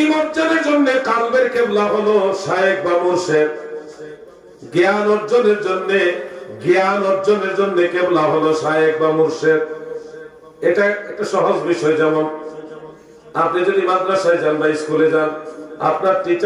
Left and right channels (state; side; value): identical; both; correlation 1.00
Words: অর্জনের জন্য কালবের কেবলা হলো শায়েখ বা মুর্শিদ। জ্ঞান অর্জনের জন্য কেবলা হলো শায়েখ বা মুর্শিদ। এটা একটা সহজ বিষয়। যেমন আপনি যদি মাদ্রাসায় যান বা স্কুলে যান, আপনার